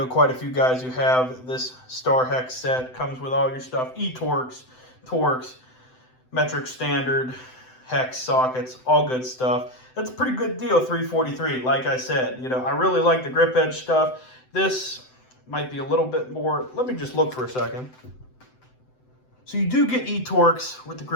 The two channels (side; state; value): right; late; 7.8 ms